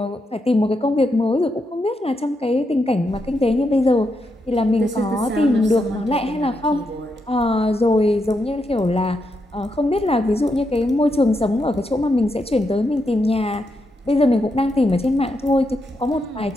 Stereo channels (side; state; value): both; normal; correlation 0.83